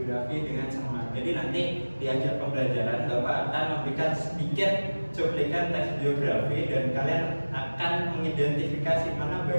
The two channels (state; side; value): inverted; both; correlation -1.00